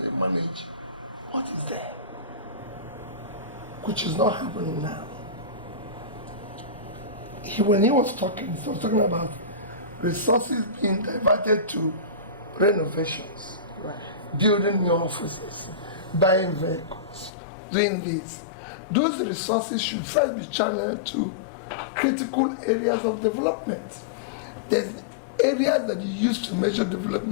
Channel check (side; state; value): right; drops out; at 17.3 s